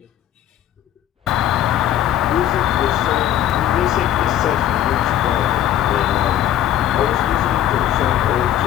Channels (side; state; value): right; quieter; 11.7 dB